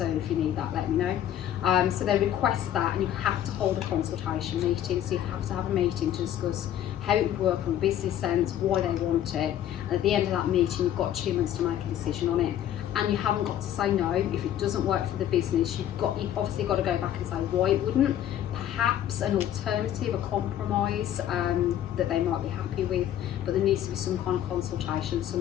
if you need that, let me know. So they request that, and you have to hold a consultation meeting. So you have to have a meeting to discuss how it would work from a business sense, why they want it. And at the end of that meeting, you've got 2 months to make a decision on it. And you haven't got to say no if it doesn't work for the business. You've obviously got to go back and say why it wouldn't. Perhaps an alternative, a compromise that they might be happy with. But there needs to be some kind of consultation,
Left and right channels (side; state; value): right; quieter; 11.2 dB